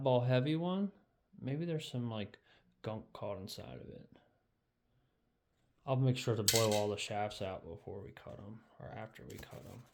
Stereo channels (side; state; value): both; identical; correlation 1.00